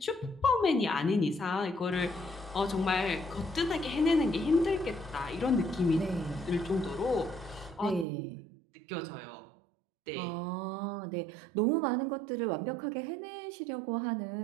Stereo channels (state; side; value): drops out; left; at 8.1 s